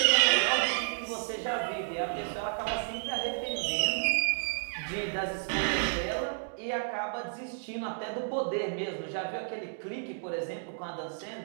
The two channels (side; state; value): left; silent; digital silence